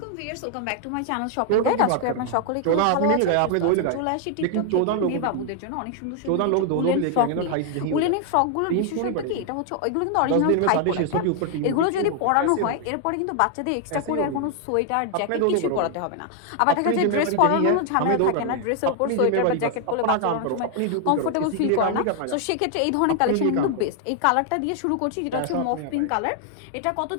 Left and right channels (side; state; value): both; different; correlation 0.00